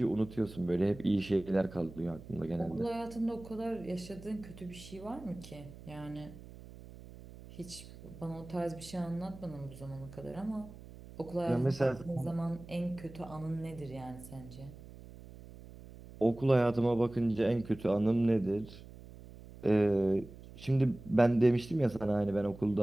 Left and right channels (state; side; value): noise; right; hum, 17 dB below the sound